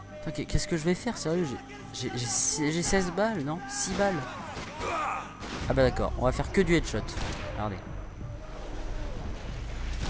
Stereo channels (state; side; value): identical; both; correlation 1.00